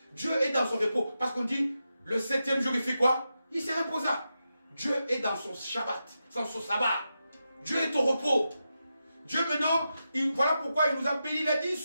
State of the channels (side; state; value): both; inverted; correlation -0.89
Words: Dieu est dans son repos. Parce qu'on dit, le 7e jour, il fait quoi? Il se reposa. Dieu est dans son Shabbat, dans son sabbat. Dieu est au repos. Dieu maintenant, voilà pourquoi il nous a bénis. Il a dit,